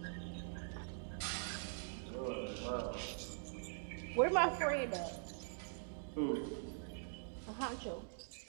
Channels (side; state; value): left; silent; digital silence